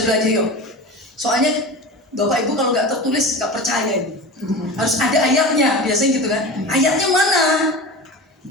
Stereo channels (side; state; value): both; normal; correlation 0.31